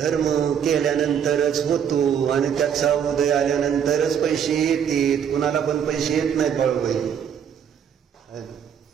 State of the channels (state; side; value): quieter; left; 8.3 dB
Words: केल्यानंतरच होतो आणि त्याचा उदय आल्यानंतरच पैसे येतात. कुणाला पण पैसे येत नाहीत बाळूबाई.